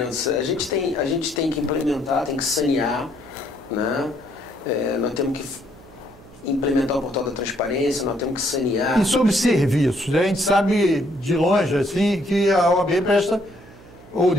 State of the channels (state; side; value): noise; right; hum, 22 dB below the sound